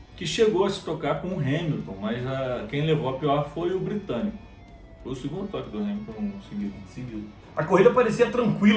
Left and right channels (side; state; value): both; identical; correlation 1.00